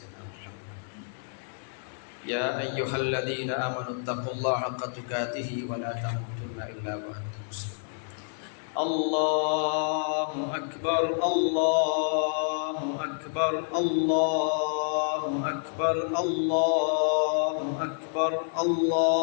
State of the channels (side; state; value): right; silent; digital silence